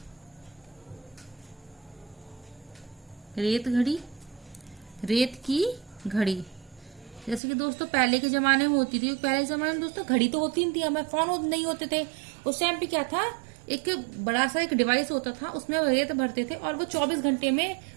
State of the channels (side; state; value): left; drops out; at 7.4 s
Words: रेत घड़ी, रेत की घड़ी। जैसे कि दोस्तों पहले के जमाने में होती थी, पहले के जमाने में दोस्तों घड़ी तो होती नहीं थी, हमें फोन नहीं होते थे। उस टाइम पे क्या था, एक बड़ा सा एक डिवाइस होता था, उसमें रेत भरते थे और वो 24 घंटे में